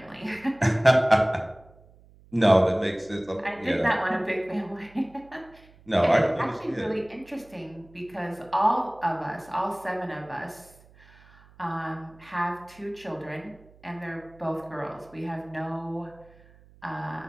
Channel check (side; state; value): right; noise; hum, 26 dB below the sound